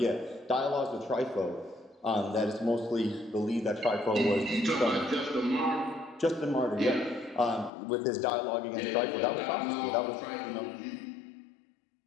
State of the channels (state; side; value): drops out; right; at 7.7 s